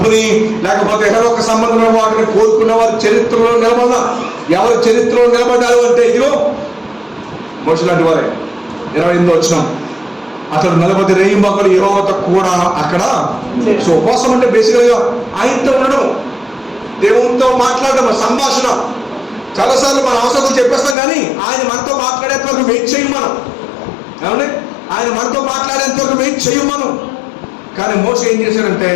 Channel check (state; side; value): drops out; right; at 21.0 s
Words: లేకపోతే ఏదో ఒక సంబంధమైన వాటిని కోరుకున్న వారు చరిత్రలో నిలబడాల. ఎవరు చరిత్రలో నిలబడ్డారు అంటే ఇదిగో మోషే లాంటి వారే. 28వ వచనం, అతడు 40 రేయింబగళ్ళు యెహోవాతో కూడా అక్కడ. సో ఉపవాసం అంటే బేసికల్గా ఆయనతో ఉండడం, దేవునితో మాట్లాడడం, సంభాషణ. చాలాసార్లు మన అవసరం చెప్పేస్తాం, కానీ ఆయన మనతో మాట్లాడేంత వరకు వెయిట్ చేయం మనం. ఏమండి, ఆయన మనతో మాట్లాడేంత వరకు వెయిట్ చేయం మనం. కానీ మోషే ఏం చేశాడంటే